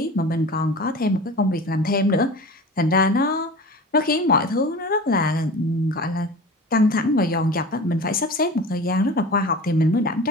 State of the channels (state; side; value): normal; both; correlation 0.36